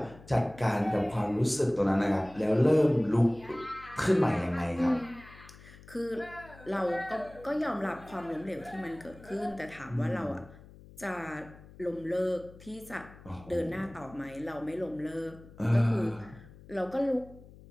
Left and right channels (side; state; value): left; noise; hum, 20 dB below the sound